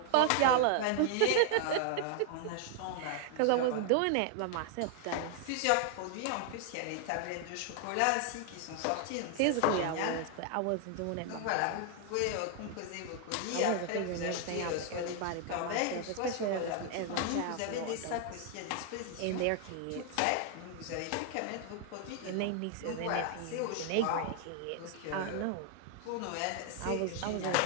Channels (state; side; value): different; both; correlation 0.00